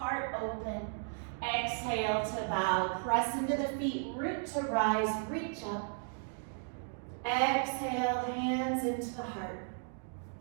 open. Exhale to bow, press into the feet, root to rise, reach up. Exhale, hands into the heart.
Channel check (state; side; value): silent; left; 54 dB below the other